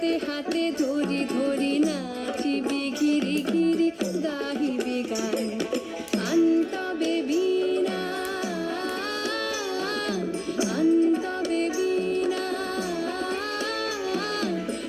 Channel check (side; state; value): both; identical; correlation 1.00